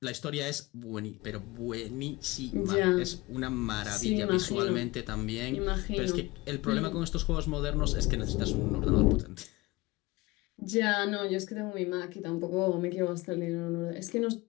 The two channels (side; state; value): right; quieter; 21.9 dB